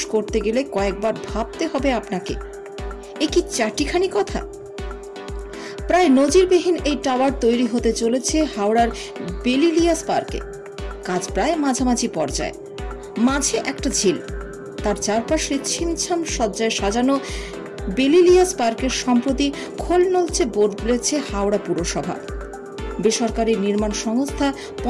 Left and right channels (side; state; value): both; identical; correlation 1.00